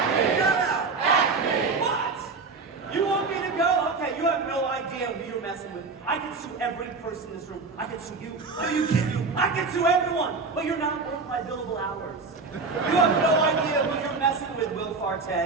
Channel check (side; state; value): left; quieter; 4.2 dB